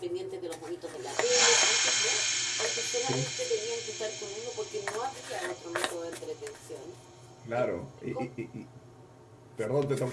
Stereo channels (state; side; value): identical; both; correlation 1.00